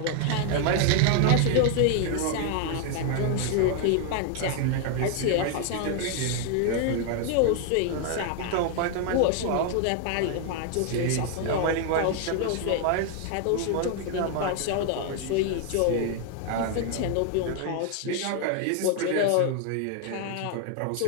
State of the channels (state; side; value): different; both; correlation 0.00